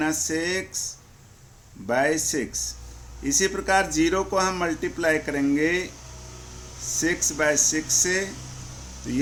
इसी प्रकार 0 को हम मल्टीप्लाई करेंगे 6/6 से तो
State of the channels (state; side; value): identical; both; correlation 1.00